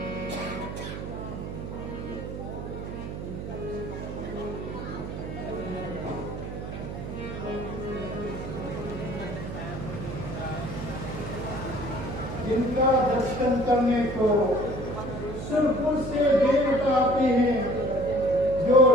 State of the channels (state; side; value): noise; right; hum, 7 dB below the sound